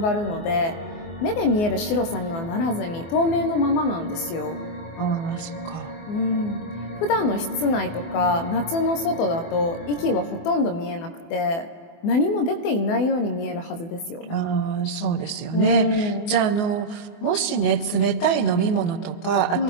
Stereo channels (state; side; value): late; right; 24 ms